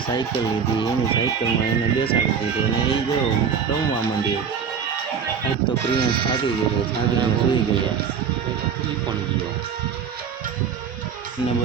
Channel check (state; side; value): quieter; left; 6.8 dB